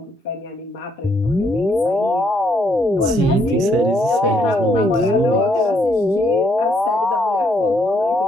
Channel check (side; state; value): both; normal; correlation 0.72